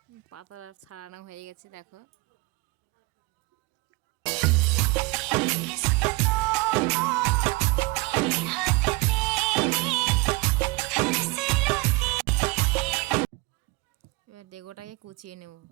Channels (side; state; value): left; quieter; 24.9 dB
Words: পাতাটা ছাড়ানো হয়ে গেছে দেখো। এবার ডেগোটাকে কুচিয়ে নেব।